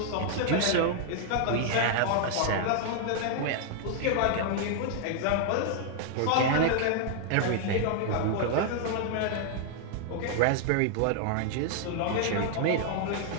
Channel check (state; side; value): different; both; correlation 0.00